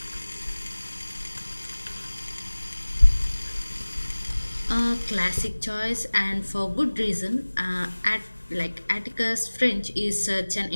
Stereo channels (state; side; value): inverted; both; correlation -1.00